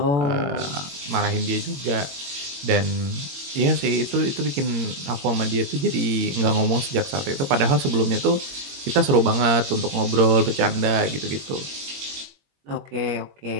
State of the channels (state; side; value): late; left; 22 ms